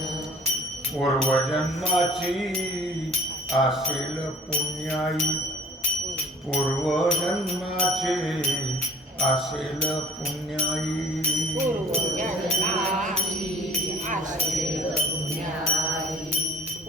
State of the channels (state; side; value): normal; both; correlation 0.51